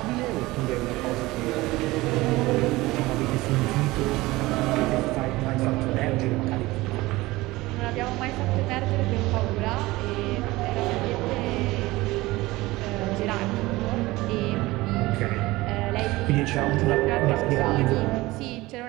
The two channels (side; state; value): left; quieter; 19.7 dB